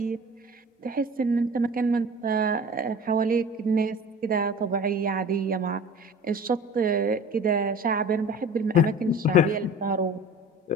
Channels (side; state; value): both; normal; correlation 0.41